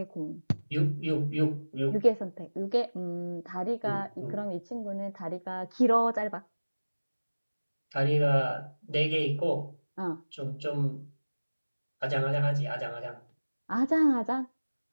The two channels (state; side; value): inverted; both; correlation -1.00